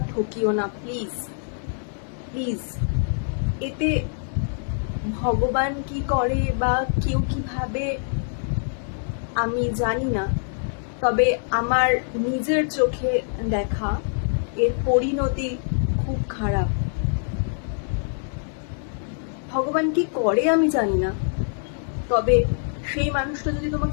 ঠকিও না, প্লিজ প্লিজ। এতে ভগবান কি করে বা কেউ কি ভাবে আমি জানি না, তবে আমার নিজের চোখে দেখা এর পরিণতি খুব খারাপ। ভগবান কি করে আমি জানি না, তবে সেই মানুষটা যদি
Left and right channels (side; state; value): right; silent; digital silence